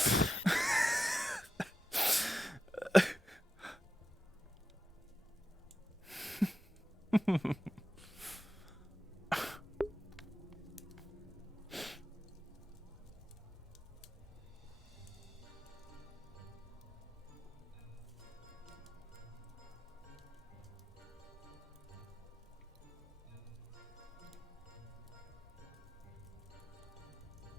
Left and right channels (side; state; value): both; normal; correlation 0.90